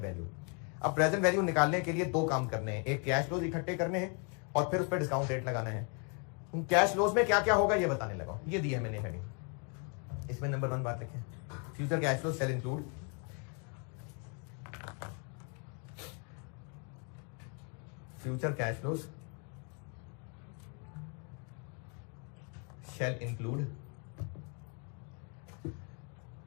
वैल्यू। अब प्रेजेंट वैल्यू निकालने के लिए 2 काम करने हैं, एक कैश फ्लोज इकट्ठे करने हैं और फिर उस पर डिस्काउंट रेट लगाना है। कैश फ्लोज में क्या क्या होगा ये बताने लगा, ये दिया है मैंने हेडिंग। इसमें नंबर 1 बात लिखें, future cash flow sale include future cash flows shall include,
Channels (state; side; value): quieter; right; 38.0 dB